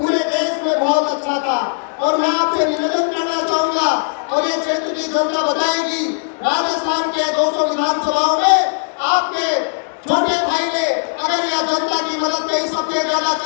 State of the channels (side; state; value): right; silent; digital silence